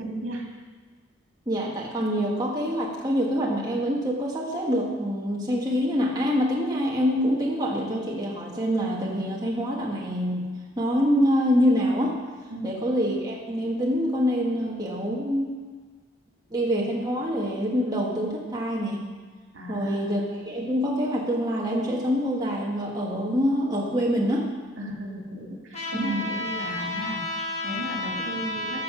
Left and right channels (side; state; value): both; normal; correlation 0.65